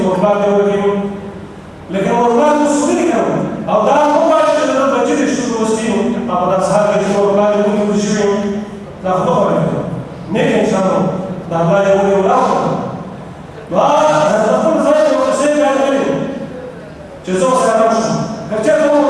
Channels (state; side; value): identical; both; correlation 1.00